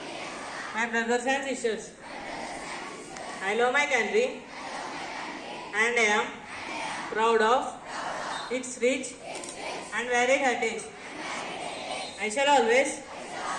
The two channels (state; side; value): identical; both; correlation 1.00